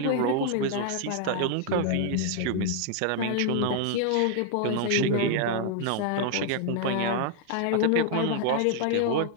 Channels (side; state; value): both; different; correlation 0.00